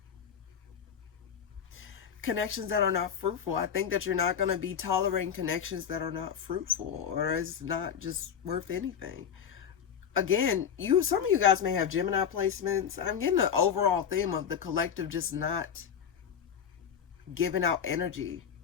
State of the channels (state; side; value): quieter; right; 7.9 dB